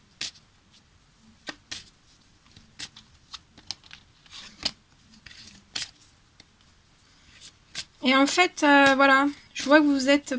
Et en fait, voilà, je vois que vous êtes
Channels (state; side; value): identical; both; correlation 1.00